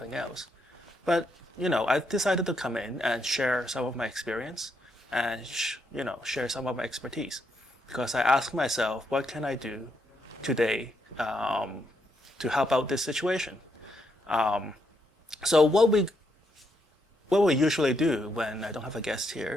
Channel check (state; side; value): normal; both; correlation 0.78